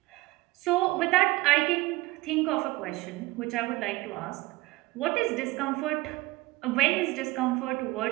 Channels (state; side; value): quieter; left; 20.2 dB